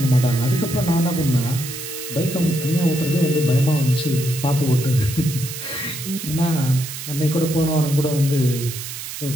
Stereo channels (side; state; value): right; noise; hiss, 9 dB below the sound